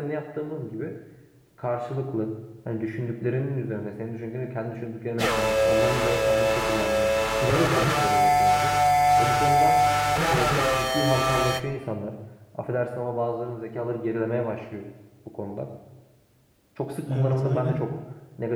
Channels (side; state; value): both; identical; correlation 1.00